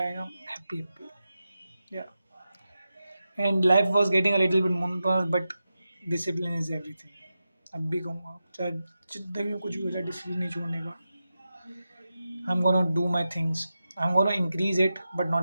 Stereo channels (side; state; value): both; inverted; correlation -0.91